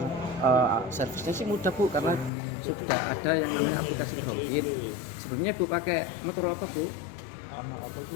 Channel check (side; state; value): right; drops out; at 2.3 s